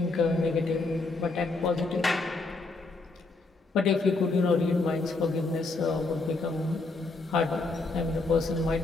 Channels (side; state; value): right; quieter; 3.5 dB